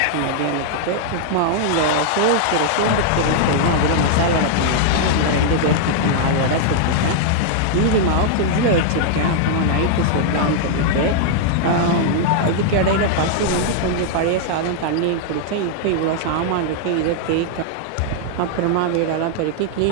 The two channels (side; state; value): both; different; correlation -0.01